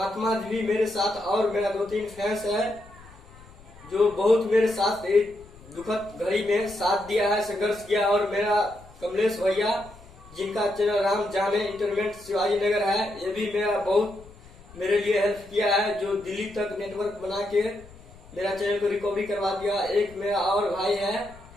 जी भी मेरे साथ, और मेरा 2-3 फैंस है जो बहुत मेरे साथ एक दुखद घड़ी में साथ दिया है, संघर्ष किया। और मेरा कमलेश भैया जिनका चैनल राम जाने इंटरनेट शिवाजी नगर है, ये भी मेरा बहुत मेरे लिए हेल्प किया है, जो दिल्ली तक नेटवर्क बना के मेरा चैनल को रिकवरी करवा दिया। एक मेरा और भाई है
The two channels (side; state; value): left; noise; rumble, 22 dB below the sound